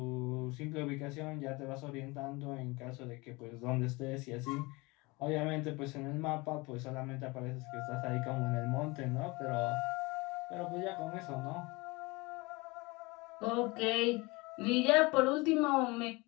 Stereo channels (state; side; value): quieter; right; 24.7 dB